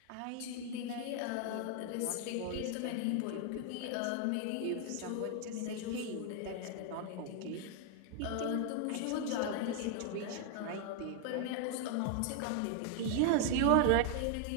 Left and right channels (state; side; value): different; both; correlation 0.00